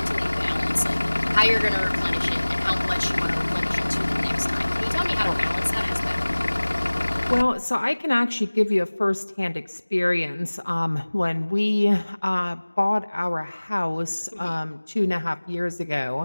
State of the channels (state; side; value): inverted; both; correlation -1.00